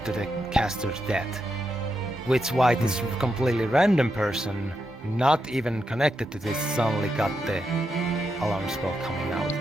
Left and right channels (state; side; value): normal; both; correlation 0.84